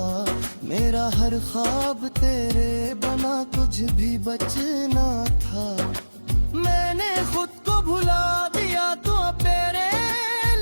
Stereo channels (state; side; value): inverted; both; correlation -1.00